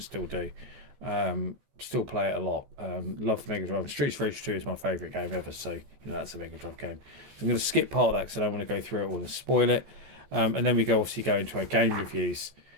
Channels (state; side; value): late; left; 14 ms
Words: still do. Still play it a lot. Love the Mega Drive. Streets Rage 2 is my favourite game ever, so that's a Mega Drive game. So I'm going to skip part of that because I don't want to go through it all and spoil it. And then we obviously go into our game reviews.